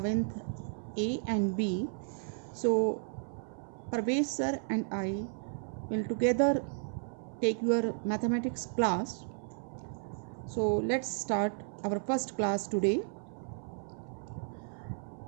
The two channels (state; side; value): silent; left; 55 dB below the other